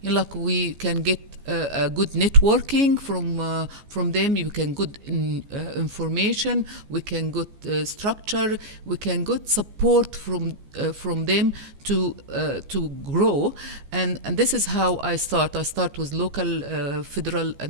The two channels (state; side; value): late; left; 14 ms